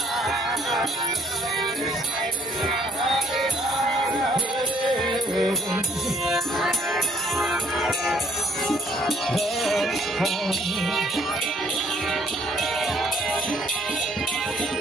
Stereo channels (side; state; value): both; normal; correlation 0.63